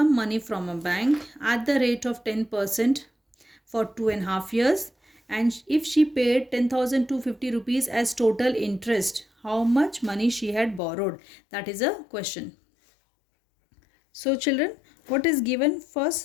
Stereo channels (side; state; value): right; drops out; at 10.8 s